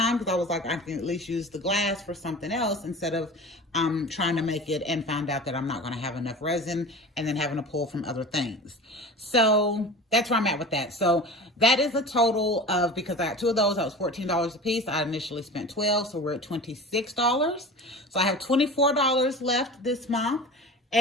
because I was like, I can at least use the glass for something else instead of trying to make it and found out that I'm not going to have enough resin and then having to pull from other things. So that's where I'm at with that. So that is a total of, because I got 2 of those, that was $14 a piece. I initially spent $12, so we're at $26. So I have $24 left this month.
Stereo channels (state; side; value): normal; both; correlation 0.35